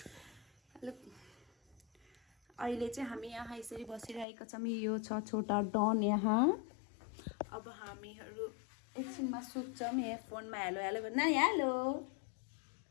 अहिले चाहिँ हामी यहाँ यसरी बसिरहेका छौँ यो छ छोटा डन यहाँ अब हामीहरू एकछिनमा सुत्छौँ यहाँ फोनमा हेलो हेलो भन् नानी हेलो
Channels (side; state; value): right; drops out; at 4.2 s